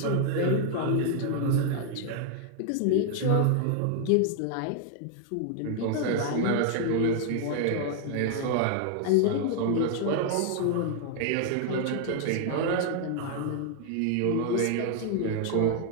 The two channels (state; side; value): different; both; correlation 0.00